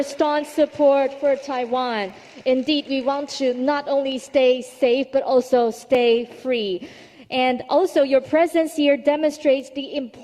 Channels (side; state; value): both; identical; correlation 1.00